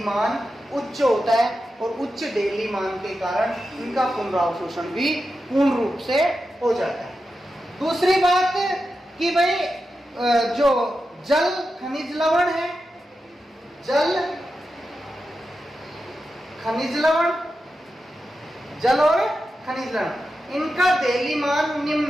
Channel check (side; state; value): both; normal; correlation 0.90